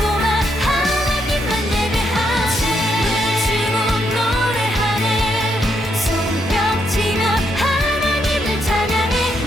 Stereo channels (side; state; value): both; normal; correlation 0.77